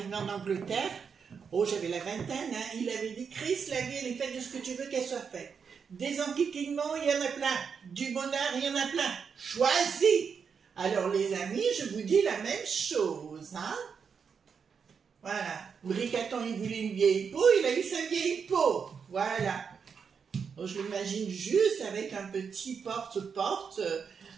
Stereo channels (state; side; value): quieter; left; 6.3 dB